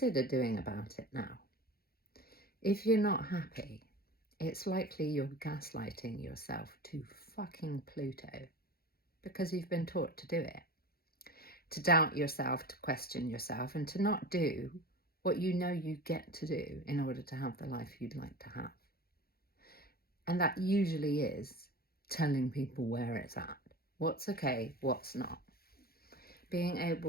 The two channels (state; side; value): late; right; 0.44 ms